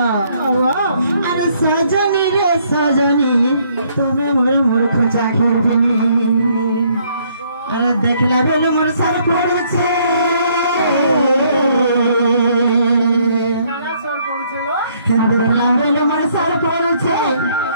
अरे सजनी रे सजनी तुम्हें मोर मूर्ख चाखिर पिनी अरे देखला बेले मोर सर पड़छे देखला बेले मोर सर पड़छे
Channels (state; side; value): inverted; both; correlation -0.67